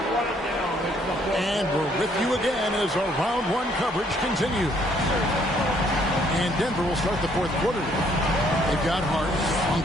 And we're with you again as our round 1 coverage continues. And Denver will start the fourth quarter. They've got Hart.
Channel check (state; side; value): normal; both; correlation 0.66